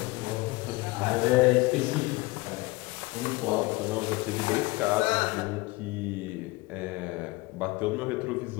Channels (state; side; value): quieter; right; 22.5 dB